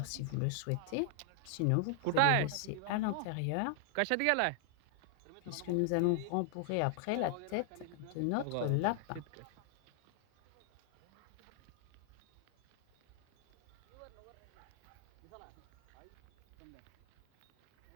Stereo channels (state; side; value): different; both; correlation 0.00